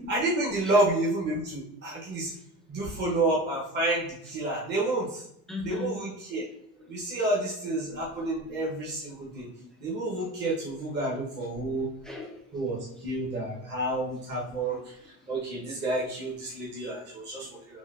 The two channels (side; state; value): both; normal; correlation 0.33